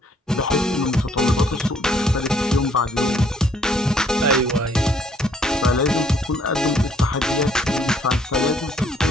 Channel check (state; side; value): normal; both; correlation 0.65